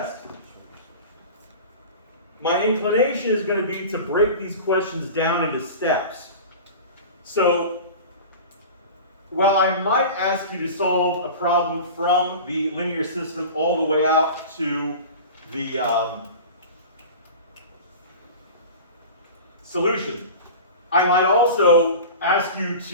my inclination is going to be to break these questions down into steps. So, while I might ask you to solve a problem from the linear system all the way out to the solution, I might also ask you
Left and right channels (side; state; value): both; inverted; correlation -0.34